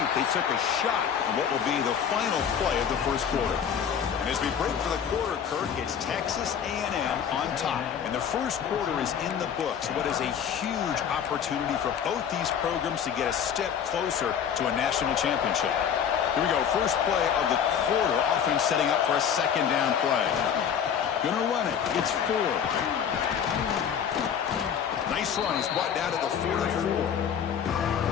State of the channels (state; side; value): quieter; right; 8.1 dB